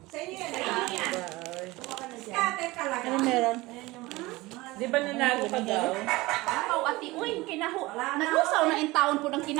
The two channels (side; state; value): left; quieter; 20.7 dB